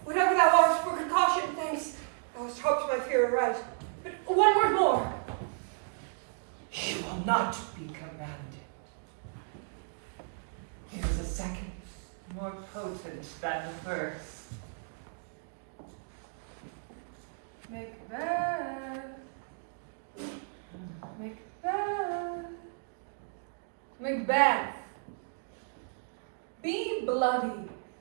Whatever thou art, for precaution, thanks. Thou hast hoped my fear aright. But one word more. She will not be commanded. There is a second, more potent than the first. Macbeth. Macbeth. Macbeth. Be bloody,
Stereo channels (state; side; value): silent; left; digital silence